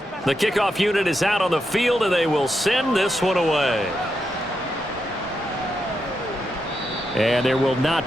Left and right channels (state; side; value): normal; both; correlation 0.84